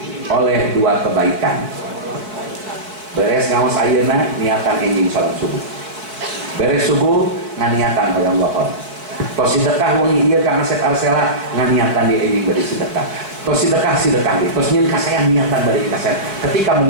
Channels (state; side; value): late; left; 4.5 ms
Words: oleh dua kebaikan. Beres ngaos ayeuna niatan enjing salat subuh. Beres subuh nganiatan hoyong lohor. Tos sedekah wengi ieu ka aset arsela nganiatan di enjing bari sedekah. Tos sedekah deui. Tos nyieun ka saya niatan bari ka saya. Ketika